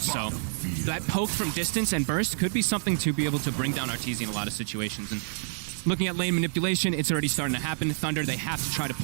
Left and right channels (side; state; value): left; silent; digital silence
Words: So that poke from distance and burst could be something to be able to bring down Arteezy in a lot of situations. And looking at lane manipulation, it's already starting to happen. Thunder, they have to try to